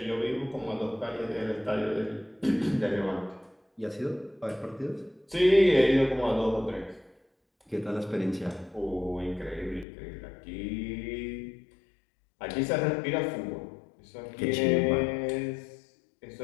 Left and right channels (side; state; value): right; drops out; at 9.9 s